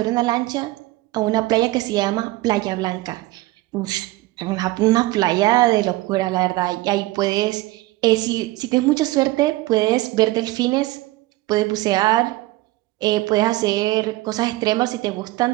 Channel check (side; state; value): left; quieter; 18.7 dB